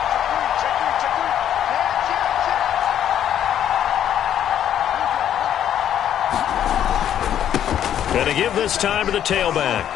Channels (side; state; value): right; quieter; 10.2 dB